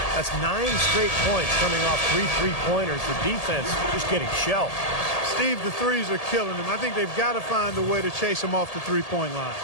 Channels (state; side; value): late; right; 1.8 ms